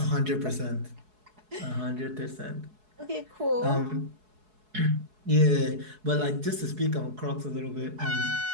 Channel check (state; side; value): late; left; 4.7 ms